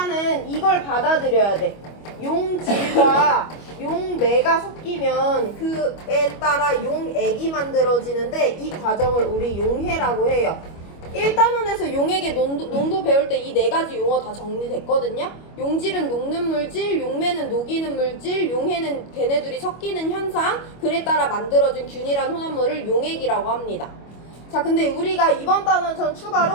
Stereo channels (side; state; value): right; late; 25 ms